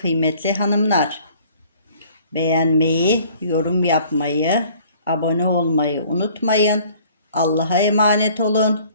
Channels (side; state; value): both; inverted; correlation -0.55